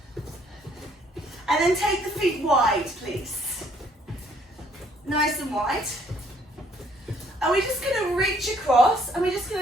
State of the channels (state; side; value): normal; both; correlation 0.64